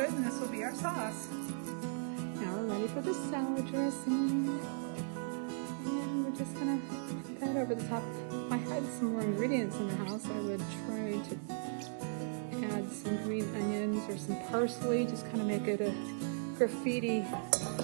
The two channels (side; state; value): left; silent; digital silence